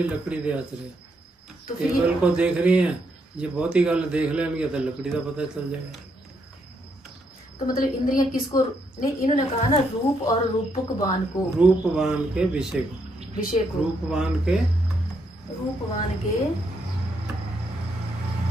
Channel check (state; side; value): normal; both; correlation 0.76